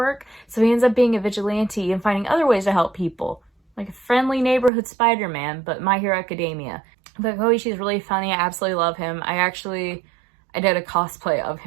So he ends up being a vigilante and finding other ways to help people. Like a friendly neighborhood Spider-Man, but My Hero Academia. But Koichi is really funny. I absolutely love him. I did a cosplay of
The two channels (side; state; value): left; drops out; at 4.7 s